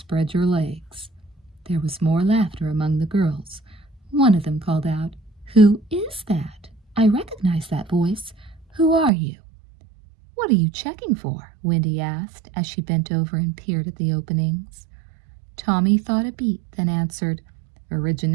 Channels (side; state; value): left; drops out; at 9.1 s